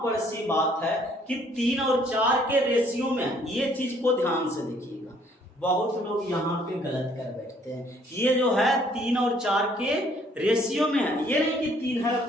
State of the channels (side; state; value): both; normal; correlation 0.62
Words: पर सी बात है कि 3 और 4 के रेशियो में, ये चीज को ध्यान से देखिएगा, बहुत लोग यहाँ पे गलत कर बैठते हैं। ये जो है 3 और 4 के रेशियो में है, ये नहीं कि 3 है और